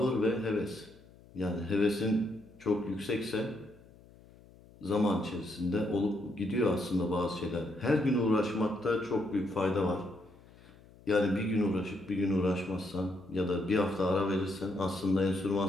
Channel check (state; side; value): noise; left; hum, 24 dB below the sound